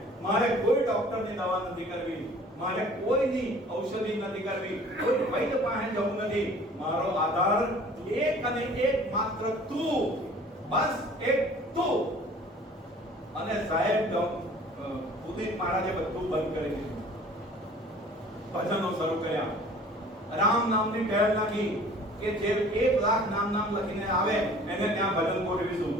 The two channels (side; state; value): both; normal; correlation 0.50